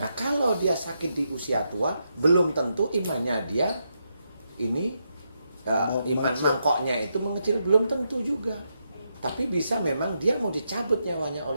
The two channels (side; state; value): both; inverted; correlation -0.82